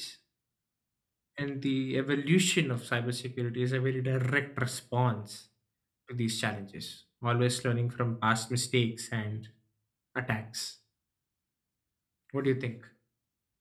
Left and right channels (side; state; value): both; identical; correlation 1.00